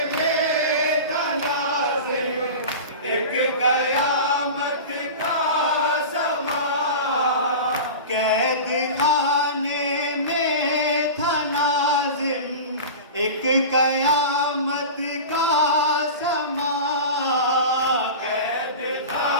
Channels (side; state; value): both; inverted; correlation -0.31